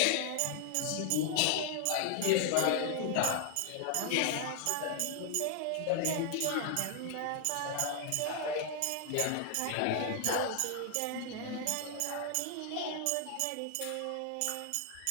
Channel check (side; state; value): both; different; correlation 0.00